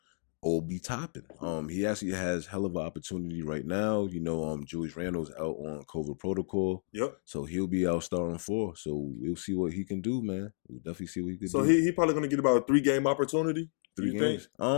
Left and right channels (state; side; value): silent; right; digital silence